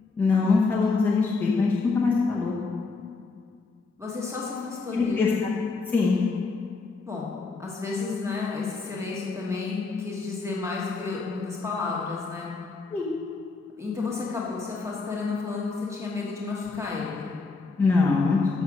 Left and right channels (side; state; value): right; quieter; 4.1 dB